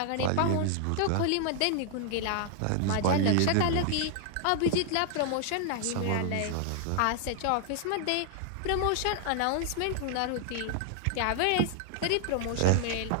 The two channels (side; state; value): both; different; correlation 0.00